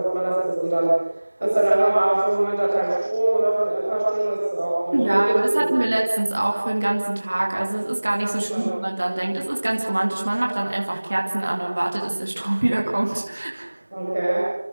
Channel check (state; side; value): inverted; both; correlation -1.00